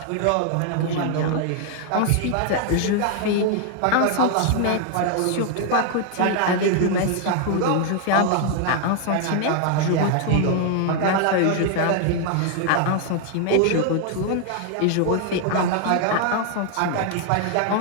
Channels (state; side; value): different; both; correlation 0.00